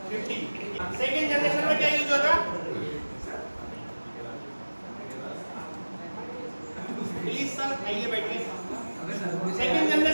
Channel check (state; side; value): inverted; both; correlation -1.00